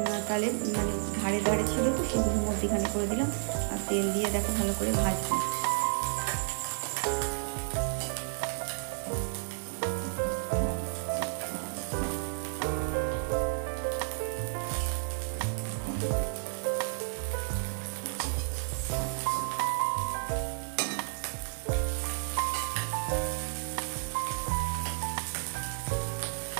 তাহলে মানে ধারে ধারে ছিল তো সেগুলো মধ্যিখানে করে দিলাম, আর তেল দিয়ে দেখো ভালো করে ভাজবো।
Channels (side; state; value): left; silent; digital silence